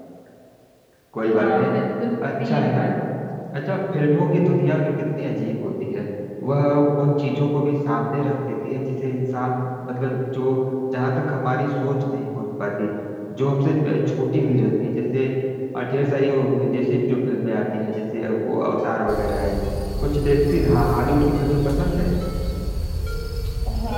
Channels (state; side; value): identical; both; correlation 1.00